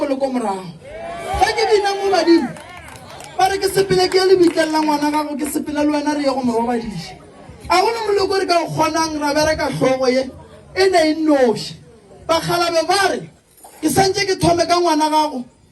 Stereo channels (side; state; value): both; identical; correlation 1.00